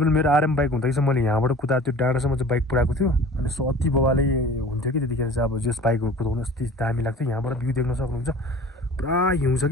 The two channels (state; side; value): normal; both; correlation 0.43